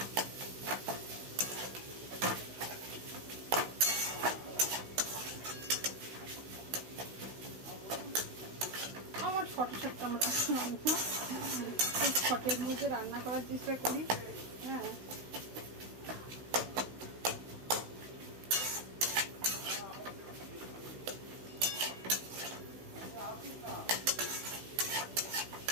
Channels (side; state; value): left; late; 16 ms